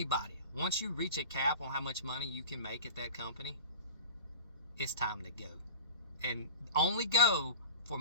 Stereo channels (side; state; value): both; inverted; correlation -0.34